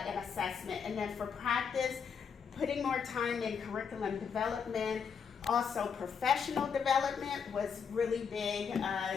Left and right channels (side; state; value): right; quieter; 6.5 dB